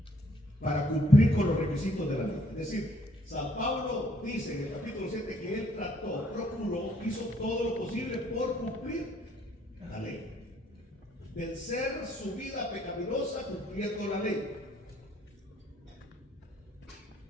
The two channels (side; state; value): both; normal; correlation 0.65